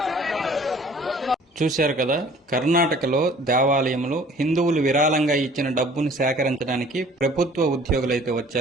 చూశారు కదా, కర్ణాటకలో దేవాలయంలో హిందువులు విరాళంగా ఇచ్చిన డబ్బును సేకరించడానికి ప్రభుత్వ ఉద్యోగులైతే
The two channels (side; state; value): both; normal; correlation 0.52